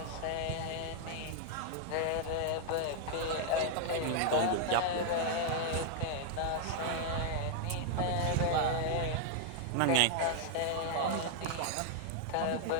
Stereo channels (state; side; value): different; both; correlation -0.01